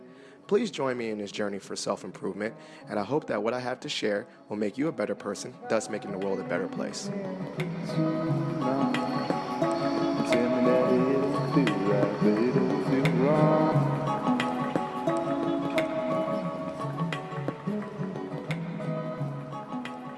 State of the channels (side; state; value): both; identical; correlation 1.00